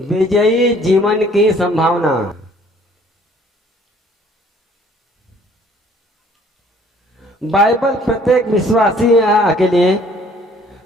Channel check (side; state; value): both; normal; correlation 0.58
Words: जीवन की संभावना। बाइबल प्रत्येक विश्वासी के लिए